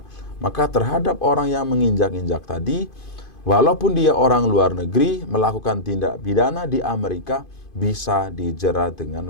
Maka terhadap orang yang menginjak-injak tadi, walaupun dia orang luar negeri melakukan tindak pidana di Amerika, bisa dijerat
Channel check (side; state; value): right; late; 2.5 ms